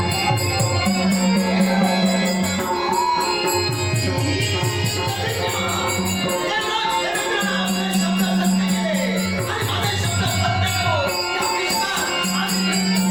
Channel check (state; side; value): noise; left; rumble, 23 dB below the sound